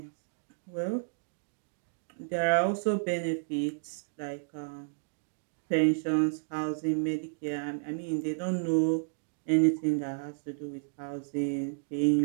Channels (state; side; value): silent; left; digital silence